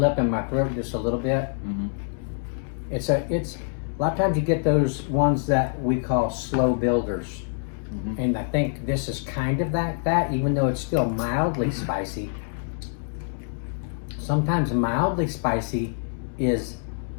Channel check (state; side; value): silent; right; 61 dB below the other